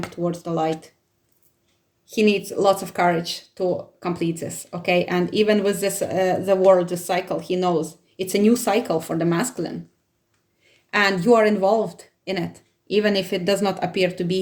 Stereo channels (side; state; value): both; identical; correlation 1.00